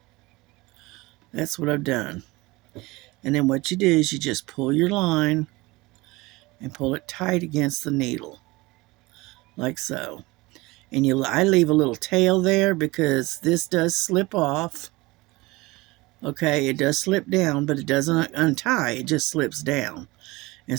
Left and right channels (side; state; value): left; quieter; 22.0 dB